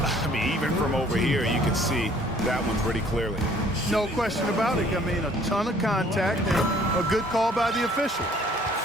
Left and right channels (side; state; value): both; normal; correlation 0.58